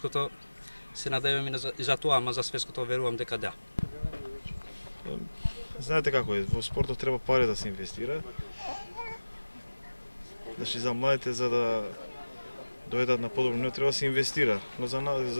се надеваме и за тоа, ама за светското верувам дека да. Знаете како е, во спортот треба пари да се инвестира. Значи за младите за да дојдат на подобро ниво треба да се инвестира. Но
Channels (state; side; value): inverted; both; correlation -1.00